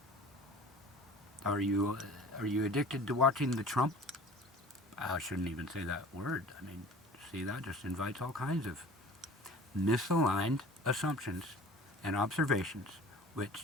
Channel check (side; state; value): both; normal; correlation 0.44